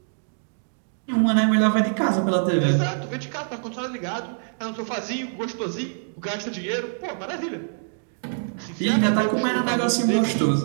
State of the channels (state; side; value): silent; left; digital silence